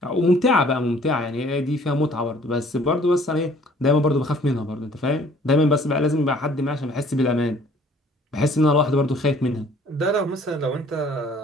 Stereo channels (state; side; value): normal; both; correlation 0.56